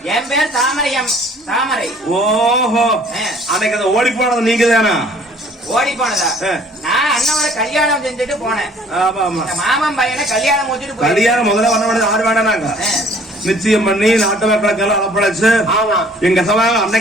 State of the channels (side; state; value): both; normal; correlation 0.56